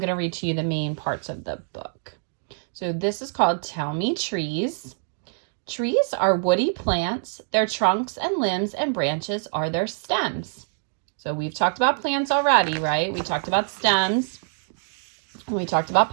to read to you the main parts of the book. So this is called Tell Me Trees. Trees are woody plants. Their trunks and limbs and branches are their stems. So we've talked about plants already, right? We talked about stems. And we talked about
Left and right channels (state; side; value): silent; left; digital silence